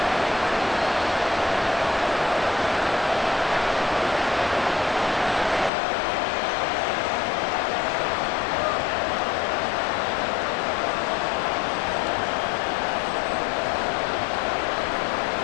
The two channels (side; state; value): right; drops out; at 5.7 s